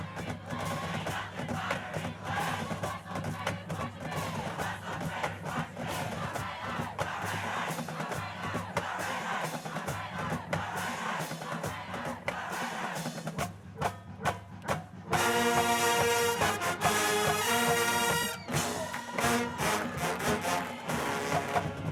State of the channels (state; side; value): identical; both; correlation 1.00